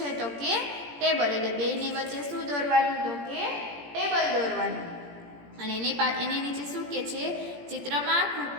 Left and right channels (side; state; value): left; late; 17 ms